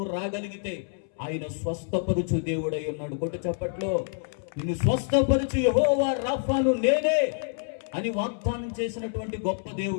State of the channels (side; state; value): right; silent; 60 dB below the other